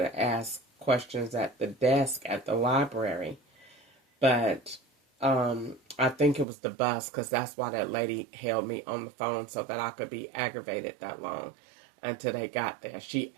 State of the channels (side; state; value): left; drops out; at 6.5 s